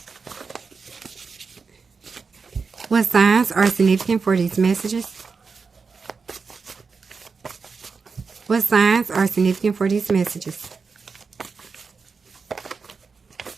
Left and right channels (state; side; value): quieter; left; 5.0 dB